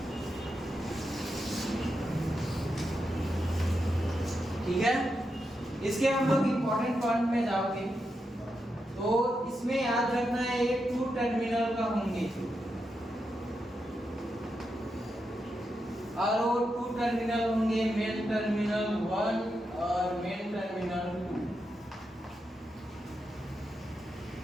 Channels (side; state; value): both; normal; correlation 0.86